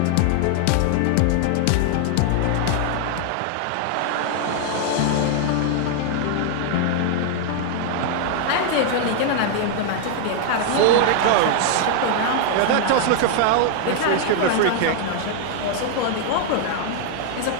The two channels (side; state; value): both; different; correlation 0.00